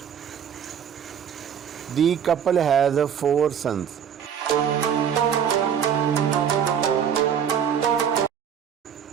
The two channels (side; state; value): left; quieter; 8.3 dB